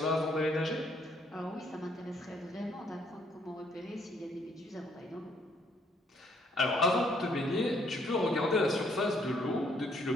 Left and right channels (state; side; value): normal; both; correlation 0.68